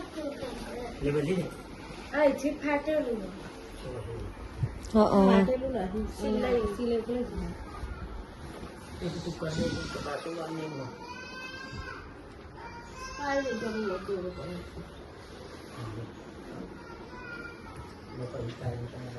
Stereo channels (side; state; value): both; identical; correlation 1.00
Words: ले बदली दे आई ठीक फाटेલું फाટેલું નથી સિલાઈ કરે एक तो कर दे तो बात ही नहीं है